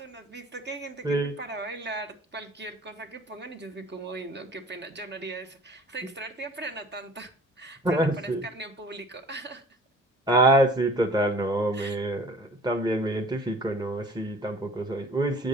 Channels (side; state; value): both; normal; correlation 0.48